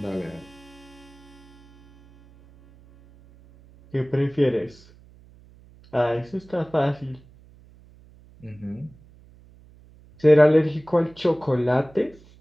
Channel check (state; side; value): noise; right; hum, 25 dB below the sound